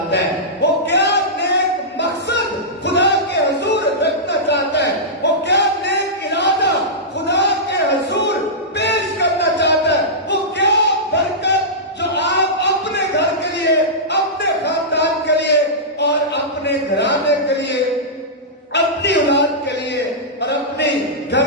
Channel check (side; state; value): both; normal; correlation -0.14